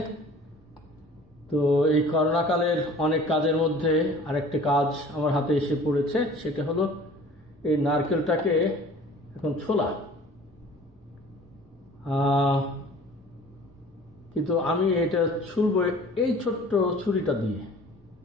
তো এই করোনাকালের অনেক কাজের মধ্যে আরেকটা কাজ আমার হাতে এসে পড়েছে, সেটা হলো এই নারকেলটাকে এখন ছোলা। কিন্তু আমি এটা ছুলবো এই ছোট্ট ছুরিটা দিয়ে।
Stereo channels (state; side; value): normal; both; correlation 0.47